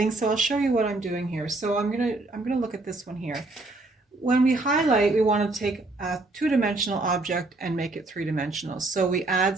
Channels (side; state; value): left; quieter; 3.0 dB